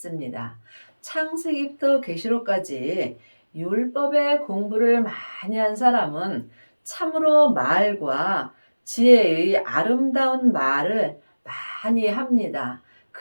창세기부터 계시록까지 율법의 공부를 많이 한 사람은 참으로 말과 지혜의 아름다운 말을 많이 합니다.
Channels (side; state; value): both; inverted; correlation -1.00